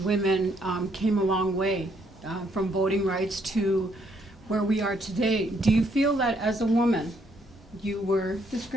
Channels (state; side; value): normal; both; correlation 0.71